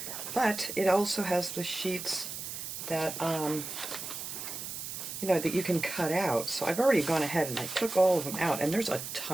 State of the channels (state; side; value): noise; right; hiss, 7 dB below the sound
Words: but it also has the sheets that that you can cut out. So I've already gone ahead and I took all of them out, and there's a